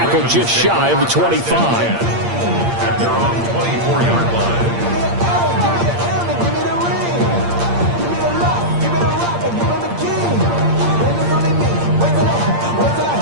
just shy of the 25. At their own 24-yard line.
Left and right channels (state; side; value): late; left; 8.6 ms